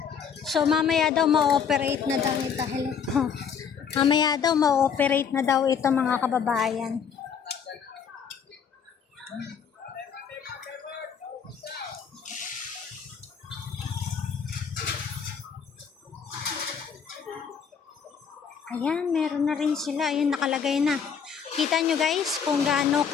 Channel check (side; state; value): right; quieter; 7.0 dB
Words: So mamaya daw ma-operate na daw ito. Hello. Mamaya daw ma-operate na daw ito mga kababayan. Ayan, meron na rin sila. Ayun, nakalagay na. Kita nyo guys kung gaano